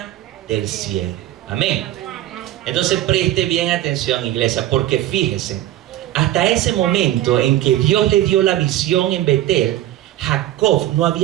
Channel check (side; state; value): left; quieter; 13.7 dB